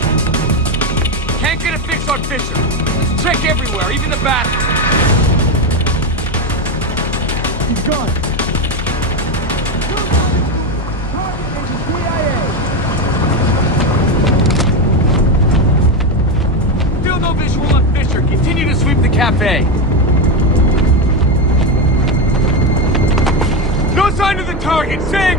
Can't get a fix on Fisher. Check everywhere, even the bathroom. He's gone. Still no visual on Fisher. Continue to sweep the cafe. No sign of the target! Say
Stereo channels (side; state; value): both; normal; correlation 0.12